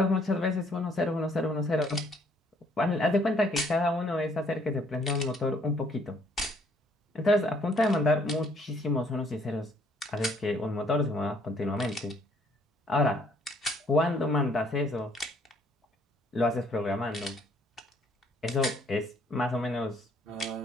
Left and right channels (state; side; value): normal; both; correlation 0.64